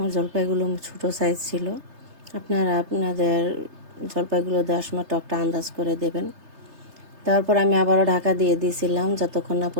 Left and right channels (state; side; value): late; left; 3.3 ms